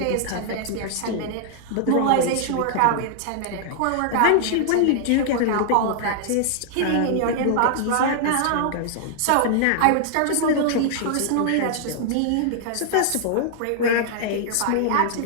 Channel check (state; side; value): different; both; correlation -0.01